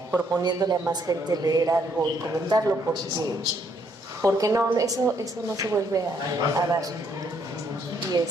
proponiéndole a más gente leer algo y comentarlo porque no, eso no se vuelve a dar. Y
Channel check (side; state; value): both; normal; correlation 0.70